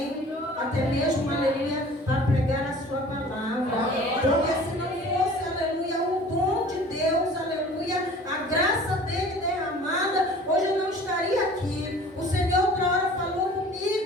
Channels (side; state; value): both; normal; correlation 0.46